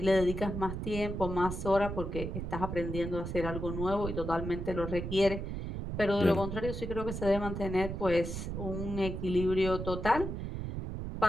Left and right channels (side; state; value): right; noise; rumble, 5 dB below the sound